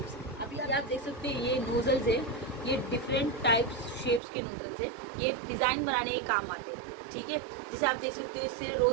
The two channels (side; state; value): left; drops out; at 4.2 s